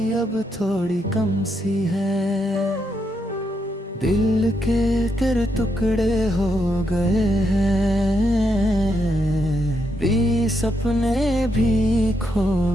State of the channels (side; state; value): both; normal; correlation 0.80